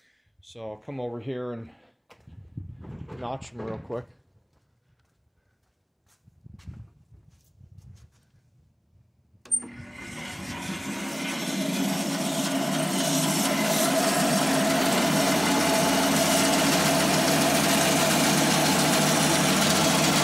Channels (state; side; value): identical; both; correlation 1.00